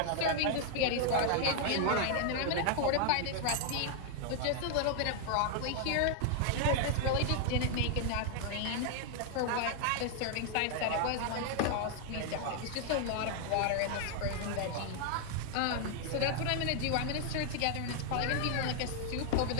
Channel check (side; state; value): both; different; correlation 0.00